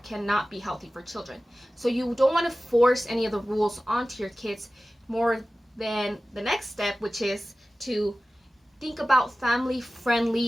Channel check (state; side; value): normal; both; correlation 0.96